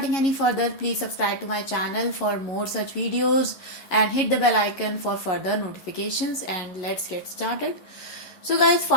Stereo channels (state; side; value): late; right; 11 ms